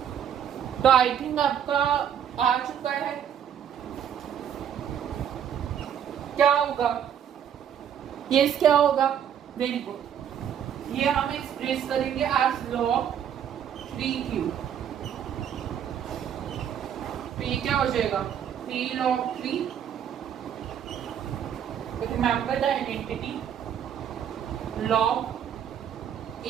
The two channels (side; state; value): left; quieter; 9.0 dB